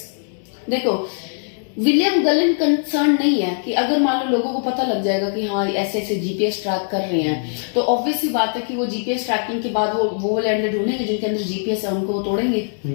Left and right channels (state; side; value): silent; right; digital silence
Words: देखो विलियम गलन कंसर्न नहीं है कि अगर मान लो लोगों को पता लग जाएगा कि हाँ ऐसे ऐसे जीपीएस ट्रैक कर रहे हैं, तो ऑब्वियस सी बात है कि वो जीपीएस ट्रैकिंग के बाद वो वाले अंडे ढूंढेंगे जिनके अंदर जीपीएस है, उनको वो तोड़ेंगे,